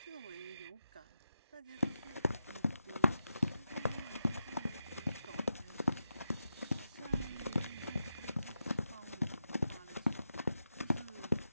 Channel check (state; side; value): inverted; both; correlation -0.87